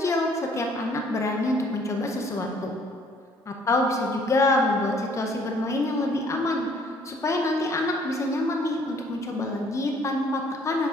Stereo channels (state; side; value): normal; both; correlation 0.60